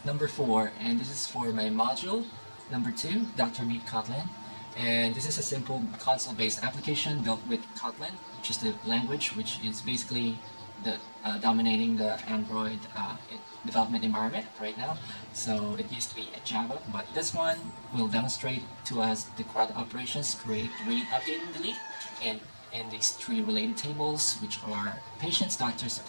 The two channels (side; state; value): both; inverted; correlation -1.00